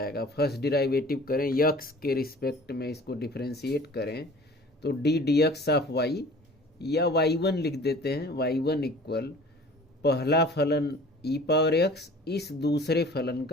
फर्स्ट डिराइवेटिव करें, यक्स के रिस्पेक्ट में इसको डिफरेंशिएट करें तो d d x of y, या y1 लिख देते हैं, y1 इक्वल पहला फलन ई पावर एक्स इस दूसरे फलन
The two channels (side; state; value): both; normal; correlation 0.46